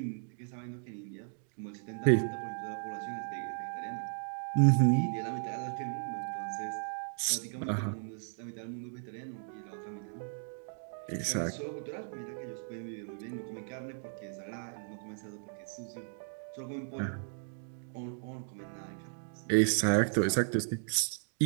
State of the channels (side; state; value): left; silent; digital silence